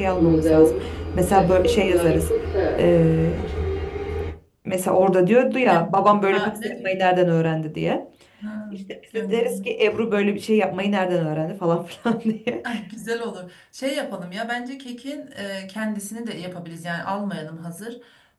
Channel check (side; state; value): both; identical; correlation 1.00